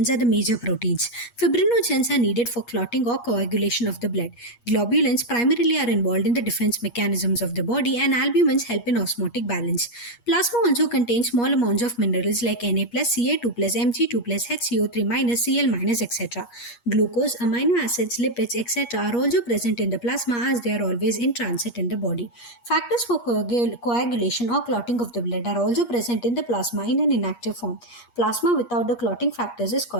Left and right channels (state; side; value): late; right; 8.4 ms